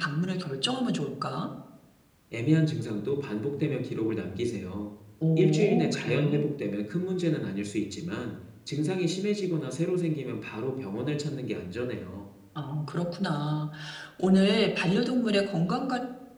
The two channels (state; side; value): identical; both; correlation 1.00